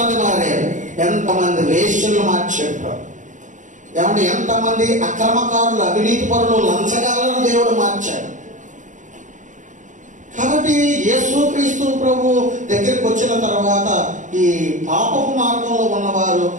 మారారు, ఎంతమంది వేశ్యలు మార్చారు. ఏమంటే ఎంతమంది అక్రమకారులు, అవినీతి పరులు, లంచగాలను దేవుడు మార్చాడు. కాబట్టి యేసుక్రీస్తు ప్రభు దగ్గరికి వచ్చిన తర్వాత ఈ పాపపు మార్గంలో ఉన్నవారు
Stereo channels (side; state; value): left; late; 0.36 ms